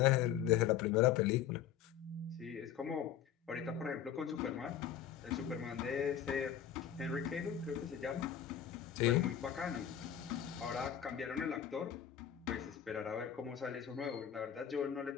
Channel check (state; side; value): quieter; right; 9.6 dB